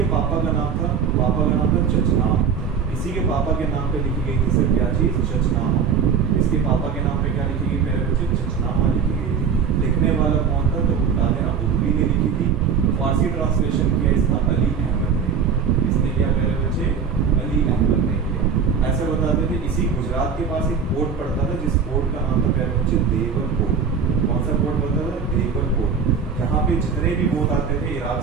पापा का नाम था चचनाम। इसी के पापा के नाम पे लिखी गई थी सर क्या चीज? चचनामा। इसके पापा के नाम पे क्या लिखी गई मेरे बच्चे? चचनामा लिखी गई थी। लिखने वाला कौन था? तो बता देना, उर्दू ने लिखी थी। फारसी ट्रांसलेशन किया इसका अली अहमद ने। इसने क्या मेरे बच्चे? अली अहमद ने किया। ऐसे बताते थे इसी गुजरात के पास एक पोर्ट पड़ता था, जिस पोर्ट का नाम था मेरे बच्चे देवल पोर्ट। कौन सा पोर्ट पड़ता था? देवल पोर्ट। यहाँ पे जितने भी बोट आते थे इराक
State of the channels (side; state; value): left; quieter; 6.3 dB